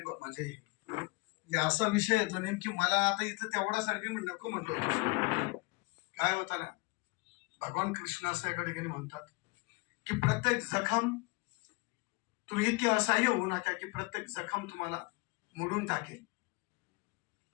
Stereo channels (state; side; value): quieter; right; 27.9 dB